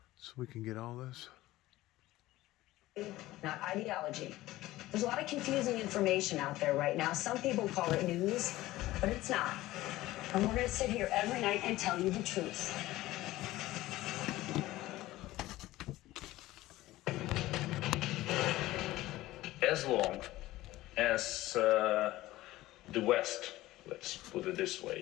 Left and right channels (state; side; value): quieter; right; 16.9 dB